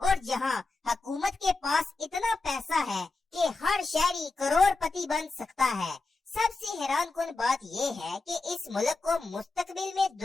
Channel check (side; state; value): right; quieter; 3.5 dB